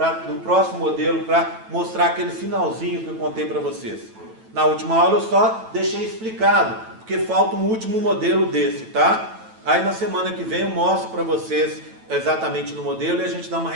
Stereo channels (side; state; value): left; late; 9.1 ms